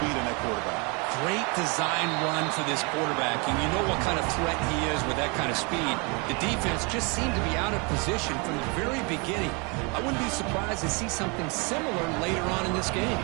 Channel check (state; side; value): quieter; left; 31.2 dB